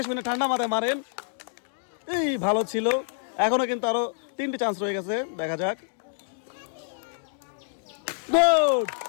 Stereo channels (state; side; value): silent; right; digital silence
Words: শুনে ঠান্ডা মাথায় মারেন। এই ভালো ছিল। এখনো কিন্তু আরো 3টি চান্স রয়ে গেছে, দেখা যাক। Good,